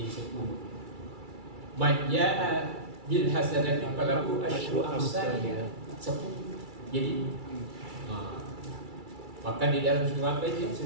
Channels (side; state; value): left; late; 2.3 ms